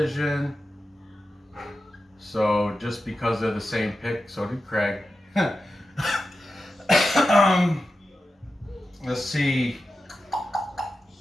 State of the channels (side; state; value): both; normal; correlation 0.91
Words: So just because they're the same pick, so did Craig. Let's see.